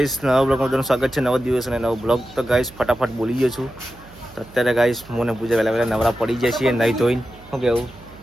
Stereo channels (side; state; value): right; noise; hum, 23 dB below the sound